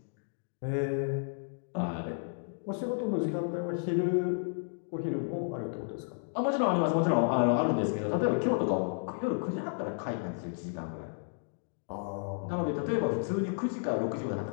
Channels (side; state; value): right; silent; digital silence